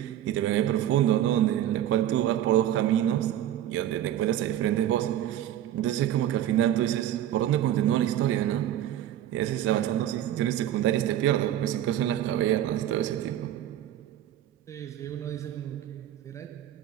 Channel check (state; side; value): quieter; left; 11.8 dB